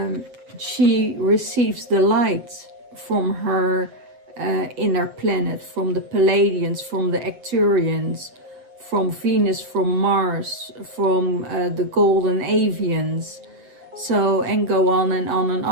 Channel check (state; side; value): late; left; 8.1 ms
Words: she receives the light from her inner planet, from the Palladians, from the Arcturians, from Venus, from Mars, from the golden avians. So, and go on and on and